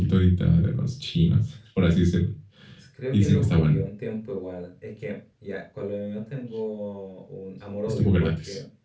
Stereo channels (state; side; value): identical; both; correlation 1.00